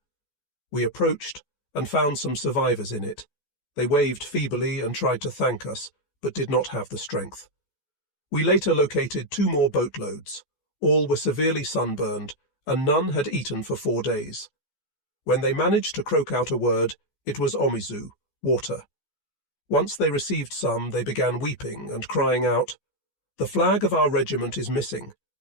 We approached and found some survivors in it. They waved feebly and tried to thank us, but did not have the strength. We later located 2 more boatloads. All were severely sunburned, and none had eaten for 4 days. When they managed to croak out a word, it was omizu, water. Once they received some, they began weeping and crying out, "The flag of our regiment is missing.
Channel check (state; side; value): late; right; 14 ms